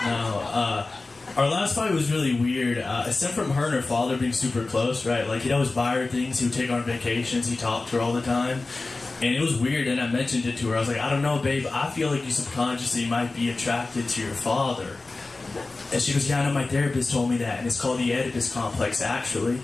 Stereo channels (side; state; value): right; quieter; 3.4 dB